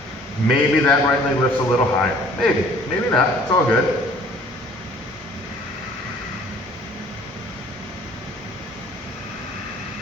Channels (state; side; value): normal; both; correlation 0.54